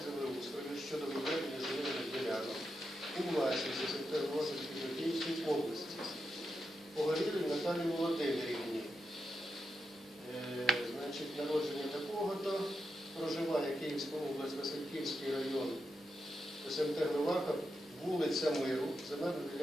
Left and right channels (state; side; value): normal; both; correlation 0.86